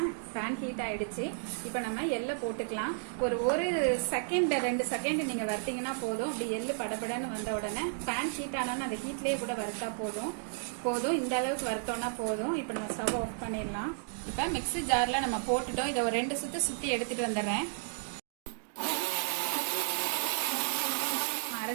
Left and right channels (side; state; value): left; silent; digital silence